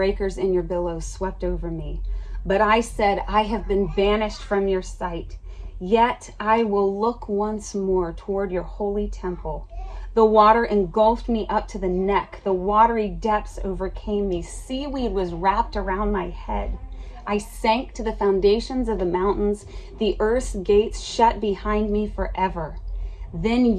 and your billows swept over me. But I said, I have been banished from your sight. Yet I will look once more toward your holy temple. The water engulfed me up to the neck. The watery depths overcame me. Seaweed was wrapped around my head. I sank to the foundations of the mountains. The earth's gates shut behind me forever. Then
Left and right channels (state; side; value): identical; both; correlation 1.00